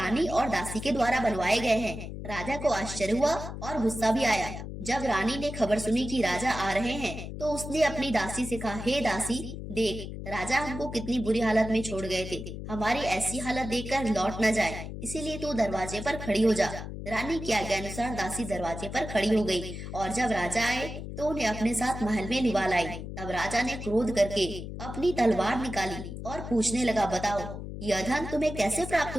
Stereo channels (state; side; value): noise; left; hum, 8 dB below the sound